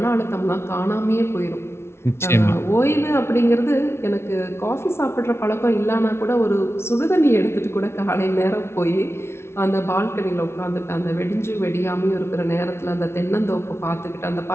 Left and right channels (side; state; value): right; late; 0.12 ms